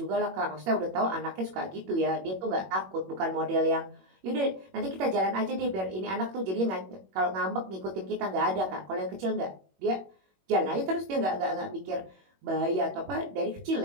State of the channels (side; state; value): left; late; 21 ms